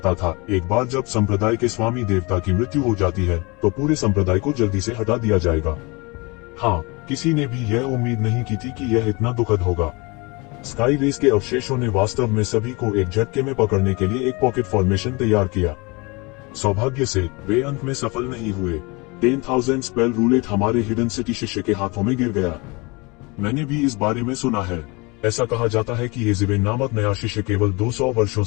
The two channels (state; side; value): quieter; right; 26.8 dB